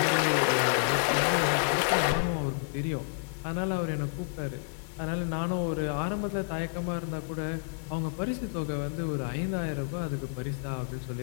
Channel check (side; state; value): right; silent; digital silence